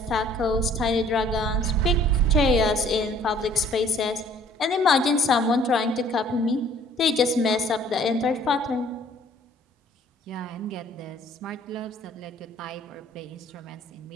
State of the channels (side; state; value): both; normal; correlation 0.56